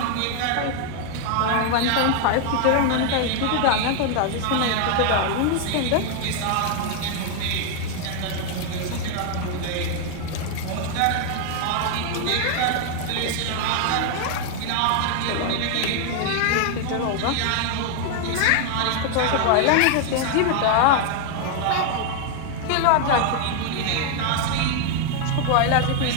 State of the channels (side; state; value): both; different; correlation 0.00